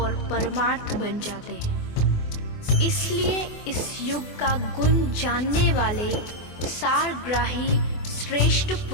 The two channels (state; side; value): late; right; 24 ms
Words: परमार्थ बन जाते हैं। इसलिए इस युग का गुण जानने वाले सारग्राही श्रेष्ठ